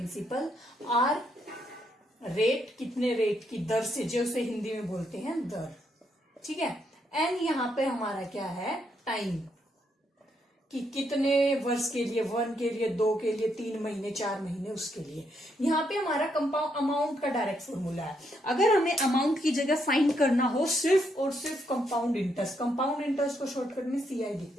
R रेट, कितने रेट की दर से, जो उसे हिंदी में बोलते हैं दर, ठीक है। N यहाँ पे हमारा क्या है? टाइम, कि कितने वर्ष के लिए, 1 के लिए, 2 के लिए, 3 महीने, 4 महीने, उसके लिए। यहाँ पे हमारा कंपाउंड अमाउंट का डायरेक्ट फॉर्मूला है। अगर हमें अमाउंट की जगह फाइंड करना हो सिर्फ और सिर्फ कंपाउंड इंटरेस्ट को शॉर्टकट में CI लिख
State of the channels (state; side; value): normal; both; correlation 0.76